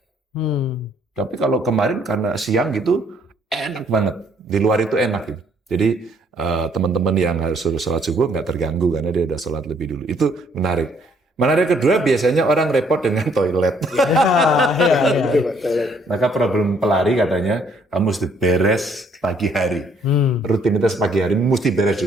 Tapi kalau kemarin karena siang gitu enak banget. Di luar itu enak gitu. Jadi teman-teman yang harus sholat subuh nggak terganggu karena dia udah sholat lebih dulu. Itu menarik. Menarik kedua biasanya orang repot dengan toilet. Betul Pak. Maka problem pelari katanya kamu mesti beres pagi hari. Rutinitas pagi hari mesti beres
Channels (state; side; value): normal; both; correlation 0.66